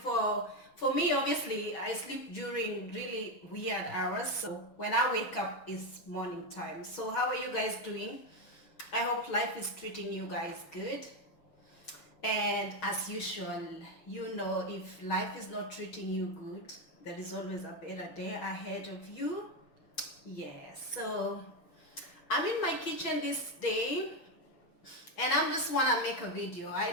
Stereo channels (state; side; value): late; right; 6.3 ms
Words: for me. Obviously, I sleep during really weird hours. So when I wake up, it's morning time. So how are you guys doing? I hope life is treating you guys good. And as usual, you know, if life is not treating you good, there is always a better day ahead of you. Yes. So I'm in my kitchen this day and I'm just wanna make a video. I